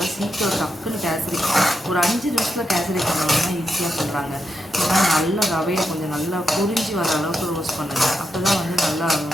சீக்கிரம் டக்குன்னு கேசரி ஒரு 5 நிமிஷத்தில் கேசரி பண்ணணும்னா ஈஸியாக சொல்கிறாங்க. ஏன்னா நல்லா ரவையை கொஞ்சம் நல்லா பொரிஞ்சு வர அளவுக்கு ரோஸ்ட் பண்ணுங்கள். அப்போ தான் வந்து நல்லா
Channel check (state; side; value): normal; both; correlation 0.85